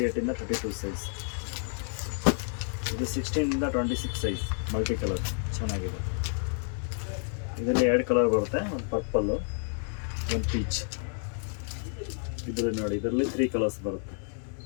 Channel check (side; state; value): right; silent; 58 dB below the other